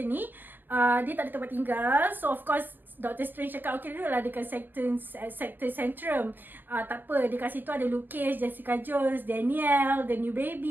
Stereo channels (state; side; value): late; left; 0.092 ms